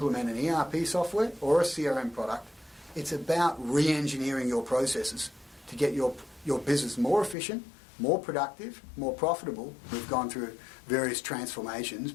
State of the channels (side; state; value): right; drops out; at 7.4 s